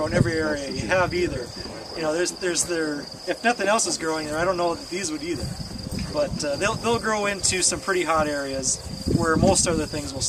in every area you have either. You know, if nothing else is growing there, I don't know that these would either. But they'll grow into some pretty hot areas where most other things will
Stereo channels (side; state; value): both; identical; correlation 1.00